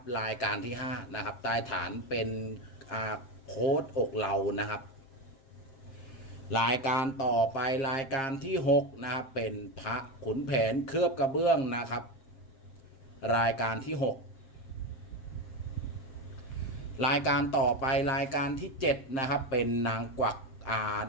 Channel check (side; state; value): right; late; 7.5 ms